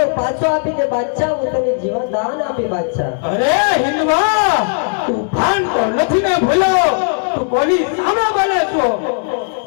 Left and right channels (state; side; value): silent; right; digital silence